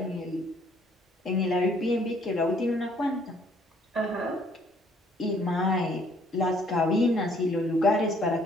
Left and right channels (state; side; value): normal; both; correlation 0.63